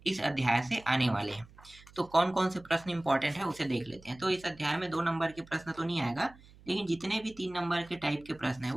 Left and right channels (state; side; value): noise; right; hum, 23 dB below the sound